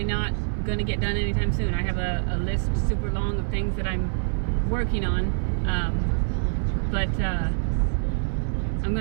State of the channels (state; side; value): silent; left; 58 dB below the other